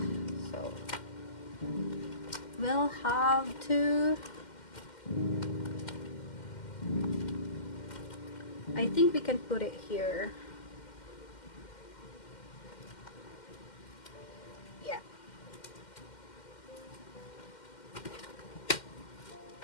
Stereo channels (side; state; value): right; late; 2.1 ms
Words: So we'll have to, I think we can put it here. Yeah.